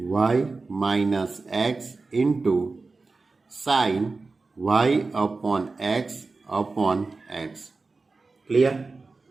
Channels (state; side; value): quieter; left; 3.8 dB